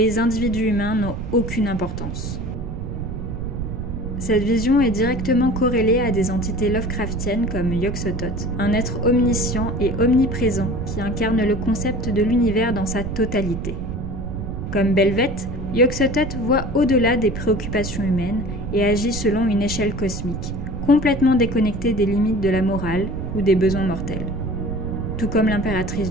individus humains n'ont aucune importance. Cette vision est directement corrélée à des entités Lovecraftiennes comme Yog-Sothoth, un être omniscient et omniprésent qui incarne le concept de l'univers dans sa totalité. Comme Belveth, Yog-Sothoth voit au-delà des préoccupations humaines et agit selon une échelle cosmique, complètement déconnectée des limites de la morale ou des besoins mortels. Tout comme l'impératrice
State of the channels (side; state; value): right; noise; rumble, 6 dB below the sound